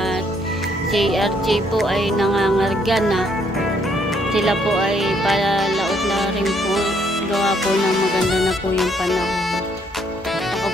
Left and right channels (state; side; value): normal; both; correlation 0.69